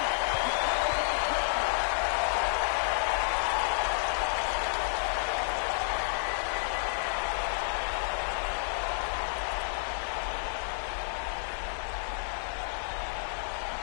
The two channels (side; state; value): right; silent; 57 dB below the other